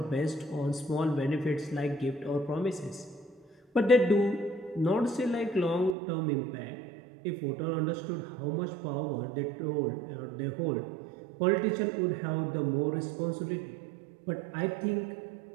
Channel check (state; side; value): drops out; left; at 6.0 s